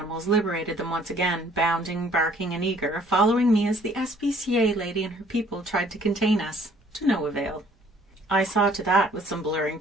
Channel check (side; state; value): both; normal; correlation 0.59